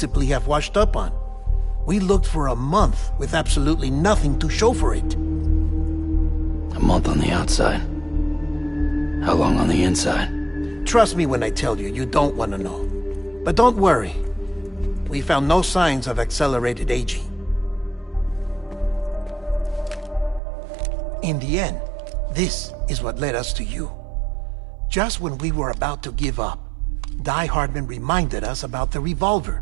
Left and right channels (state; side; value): drops out; left; at 20.4 s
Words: have washed up on. We looked for a month with absolutely nothing to show for it. A month on the outside. How long on the inside? Trust me when I tell you, you don't want to know. But don't worry. We found no signs of accelerated aging. In the end, this is what led us to you. Just when we were about to give up, Die Hartman reminded us about the